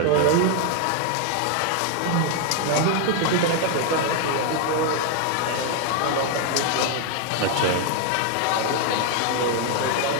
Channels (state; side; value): different; both; correlation 0.00